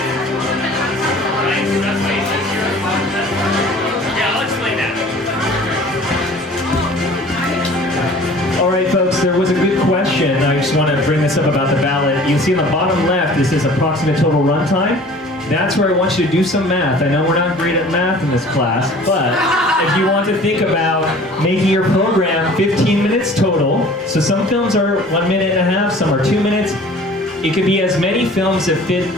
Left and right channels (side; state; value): both; normal; correlation 0.47